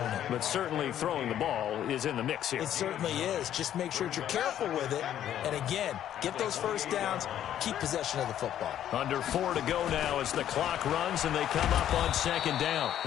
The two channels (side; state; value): right; quieter; 10.9 dB